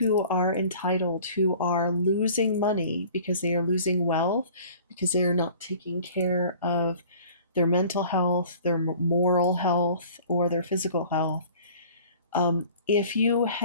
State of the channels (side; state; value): both; inverted; correlation -0.47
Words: are entitled, who are losing money because they are losing wealth, because they are not taking care of their mental health, their moral health, or their physical health. If you